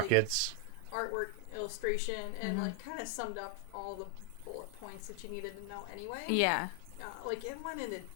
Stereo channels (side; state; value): both; different; correlation 0.00